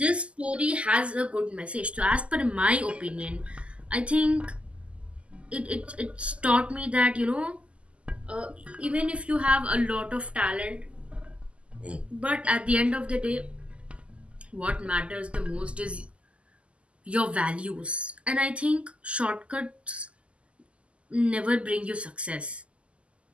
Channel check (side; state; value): left; late; 0.057 ms